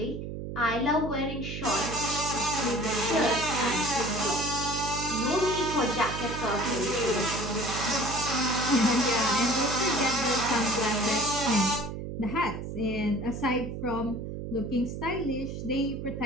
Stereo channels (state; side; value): noise; right; hum, 7 dB below the sound